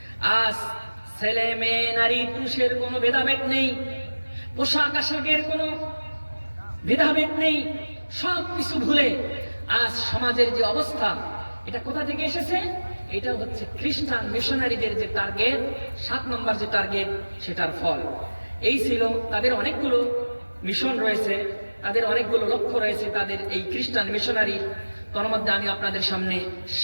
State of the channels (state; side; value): inverted; both; correlation -1.00